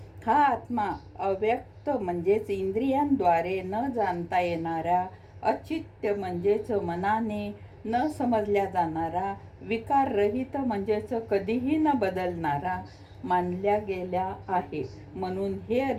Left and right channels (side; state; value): both; identical; correlation 1.00